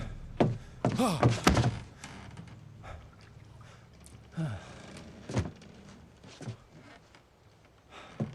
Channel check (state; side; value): identical; both; correlation 1.00